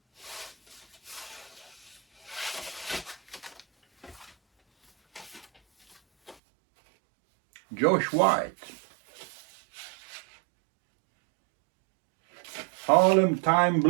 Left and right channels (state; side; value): drops out; left; at 6.4 s